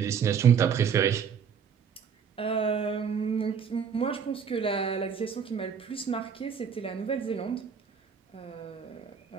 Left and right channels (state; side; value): quieter; left; 7.0 dB